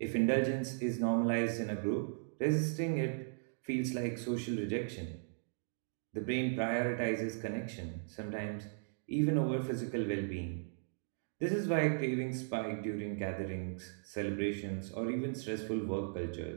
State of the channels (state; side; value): silent; left; digital silence